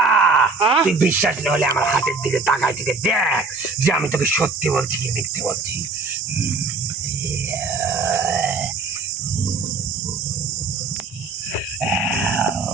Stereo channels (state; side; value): quieter; left; 4.1 dB